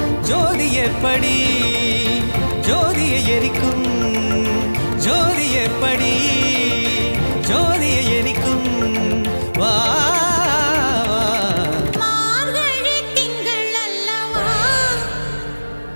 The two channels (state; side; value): inverted; both; correlation -1.00